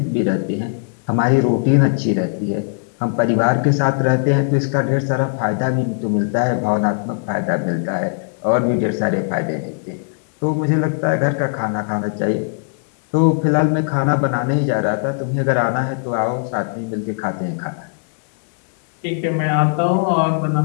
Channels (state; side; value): silent; right; digital silence